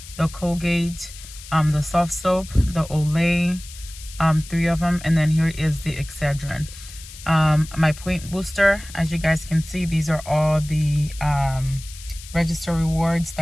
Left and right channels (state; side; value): noise; left; hiss, 16 dB below the sound